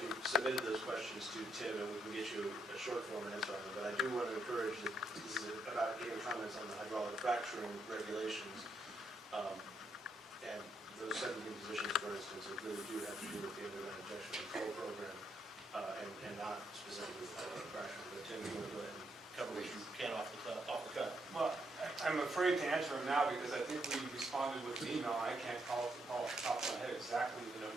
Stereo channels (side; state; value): both; normal; correlation 0.77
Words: you submitted those questions to Tim, and we can get you a short form answer on them. But I do want to encourage that this is about getting comments on the hydraulic fracturing regulations. And those 17 positions, for instance, that really do have to do with the underground injection control program, and not specifically with hydraulic fracturing. But Tim, you want to go ahead and cover what you can off the cut. Well, I'm afraid to answer them now because I think we responded with an email. I can't call off the top of my head exactly the